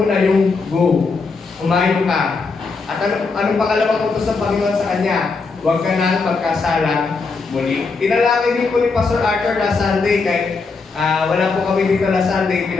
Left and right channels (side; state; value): right; quieter; 4.4 dB